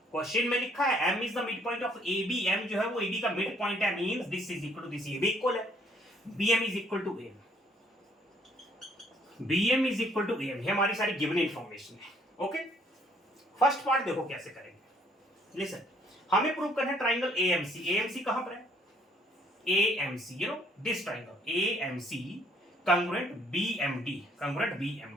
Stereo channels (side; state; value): both; normal; correlation 0.64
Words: Question में लिखा है M is the mid point of AB. M जो है वो AB का मिड पॉइंट है, means this is equal to this. ये भी इक्वल है. BM is equal to AM. BM is equal to AM. ये हमारी सारी गिवन इंफॉर्मेशन है. ओके, फर्स्ट पार्ट देखो कैसे करेंगे। लिसन, हमें प्रूव करना है ट्राइंगल एएमसी। एएमसी कहां पर है? AMC, you know this triangle AMC congruent BMD, congruent